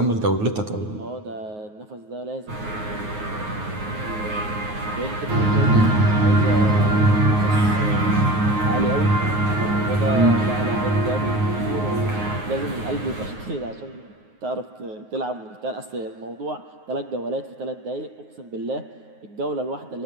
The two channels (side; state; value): left; late; 9.5 ms